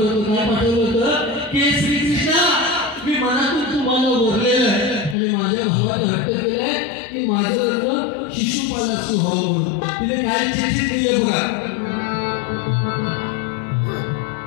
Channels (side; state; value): right; drops out; at 5.2 s